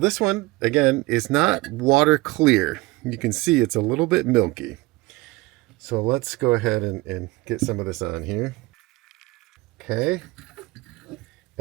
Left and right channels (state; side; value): quieter; left; 21.3 dB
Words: one, again, is not water clear. You can see it's a little bit milky. So let's go ahead and get some of this on here. Okay.